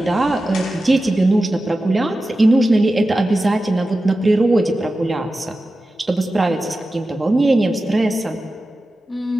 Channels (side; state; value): both; normal; correlation 0.93